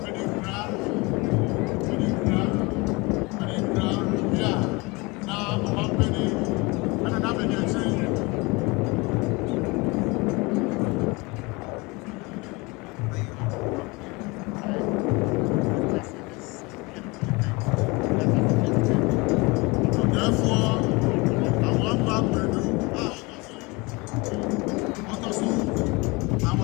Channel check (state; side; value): quieter; right; 25.7 dB